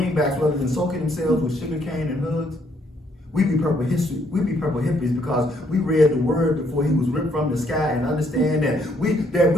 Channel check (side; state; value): both; normal; correlation 0.69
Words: rather than soaking themselves with sugarcane and hoods. We be purple history. We be purple hippies because we read the word before he was ripped from the sky and understand that we